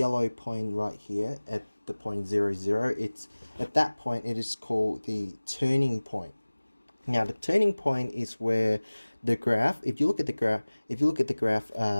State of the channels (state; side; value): inverted; both; correlation -1.00